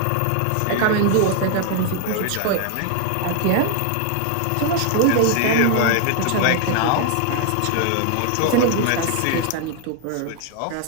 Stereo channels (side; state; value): both; different; correlation 0.00